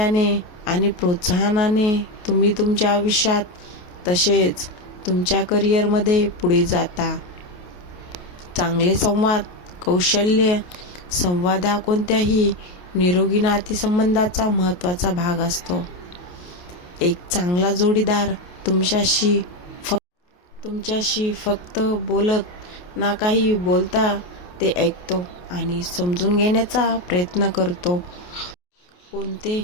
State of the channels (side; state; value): right; late; 28 ms